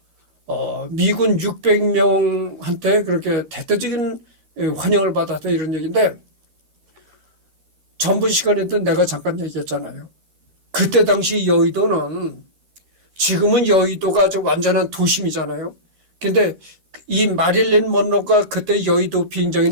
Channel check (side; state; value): left; late; 13 ms